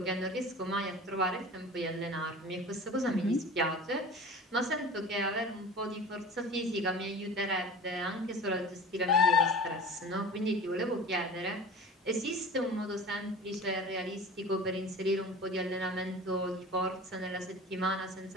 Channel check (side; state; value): both; normal; correlation 0.37